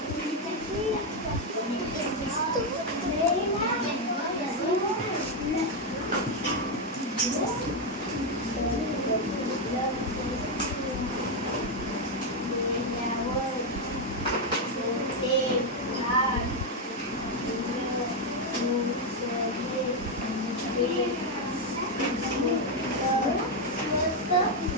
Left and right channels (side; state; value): both; normal; correlation 0.04